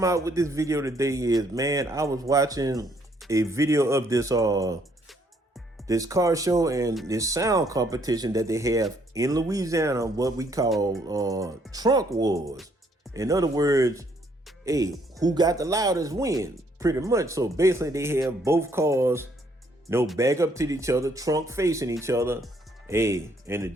out with this video today is, man, I was watching a video of this car show and this sound competition that they have in Louisiana, what we call trunk wars. In other words, hey, who got the loudest win, pretty much. So basically they have both cars, back up to each other, trunk facing each other. Hey, and the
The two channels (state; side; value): normal; both; correlation 0.68